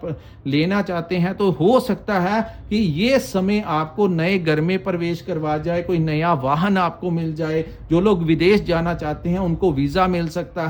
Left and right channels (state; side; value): identical; both; correlation 1.00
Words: लेना चाहते हैं तो हो सकता है कि ये समय आपको नए घर में प्रवेश करवा जाए, कोई नया वाहन आपको मिल जाए। जो लोग विदेश जाना चाहते हैं उनको वीज़ा मिल सकता